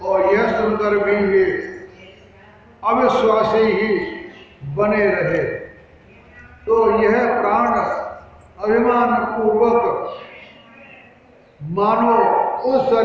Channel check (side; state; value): both; identical; correlation 1.00